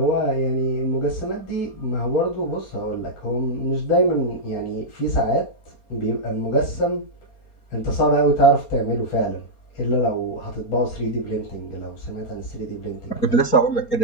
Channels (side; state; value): right; late; 4.3 ms